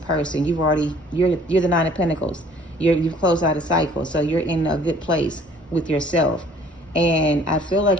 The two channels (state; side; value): normal; both; correlation 0.55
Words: You're the Nine of Pentacles. You've closed out a cycle. So you're in a good place with yourself. And I feel